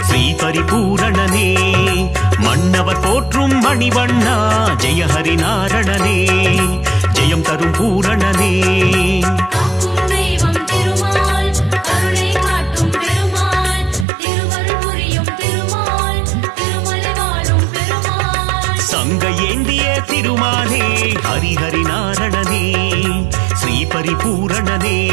ஸ்ரீ பரிபூரணனே மன்னவர் போற்றும் மணிவண்ணா ஜெய ஹரி நாரணனே ஜெயம் தரும் பூரணனே காக்கும் தெய்வம் திருமால் கருணை காட்டும் பெருமாள் திருவருள் புரியும் திருமால் திருமலை வாழும் பெருமாள் சங்க ஏந்திய திருமாலே ஹரிஹரி நாரணனே ஸ்ரீ பரிபூரணனே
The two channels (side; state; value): left; drops out; at 14.1 s